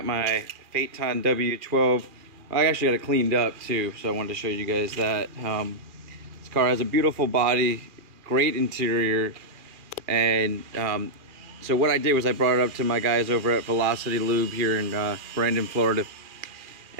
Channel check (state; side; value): late; left; 2.4 ms